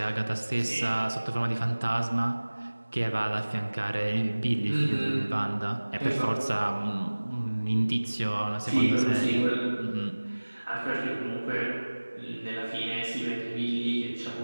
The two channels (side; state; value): both; inverted; correlation -1.00